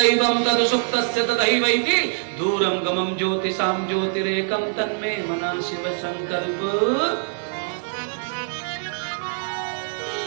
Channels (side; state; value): left; silent; 63 dB below the other